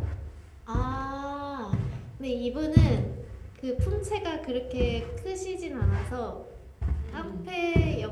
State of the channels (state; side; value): identical; both; correlation 1.00